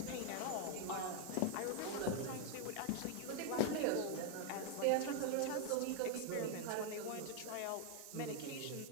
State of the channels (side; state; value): both; different; correlation 0.01